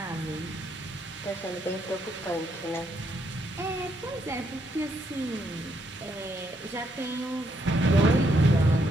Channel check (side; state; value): both; normal; correlation 0.75